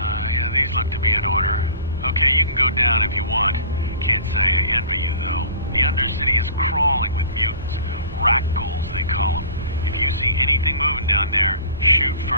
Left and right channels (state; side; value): inverted; both; correlation -0.42